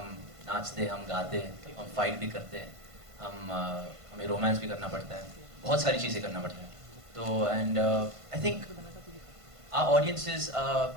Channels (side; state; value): left; late; 1.5 ms